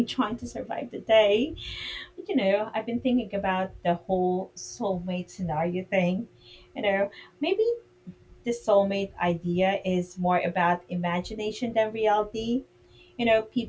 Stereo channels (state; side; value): identical; both; correlation 1.00